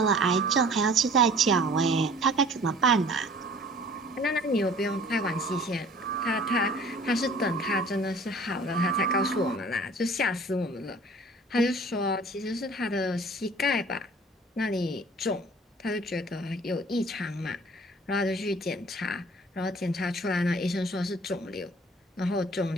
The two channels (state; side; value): normal; both; correlation 0.50